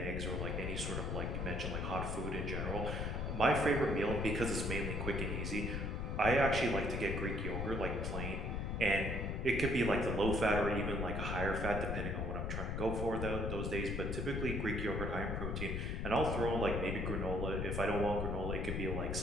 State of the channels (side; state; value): left; noise; rumble, 1 dB below the sound